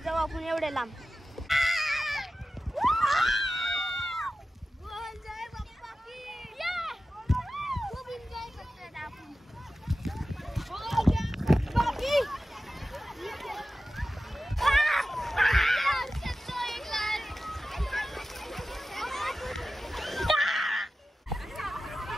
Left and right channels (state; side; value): normal; both; correlation 0.95